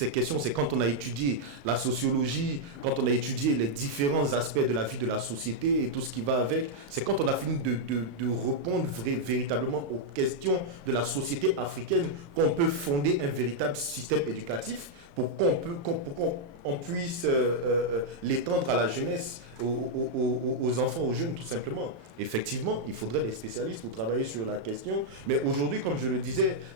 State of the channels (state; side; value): late; left; 35 ms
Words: questions, c'est quand on a étudié la sociologie, quand on a étudié les différents aspects de la vie de la société et tout ce qui va avec, c'est quand on a fini de répondre véritablement aux questions de la société africaine qu'on peut fonder un véritable système éducatif pour qu'on puisse l'étendre à la jeunesse, aux enfants, aux jeunes, tout simplement. Effectivement, il faudrait des spécialistes pour travailler sur la question. Mais aujourd'hui, comme je le disais,